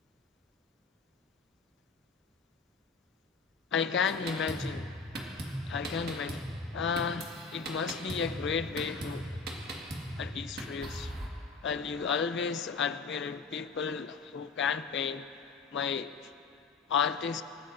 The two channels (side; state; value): right; quieter; 4.9 dB